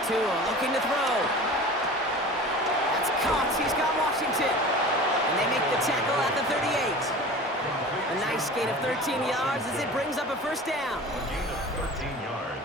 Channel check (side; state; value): both; normal; correlation 0.38